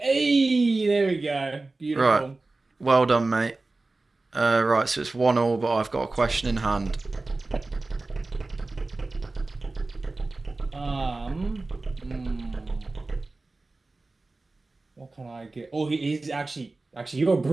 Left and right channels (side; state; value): left; quieter; 3.3 dB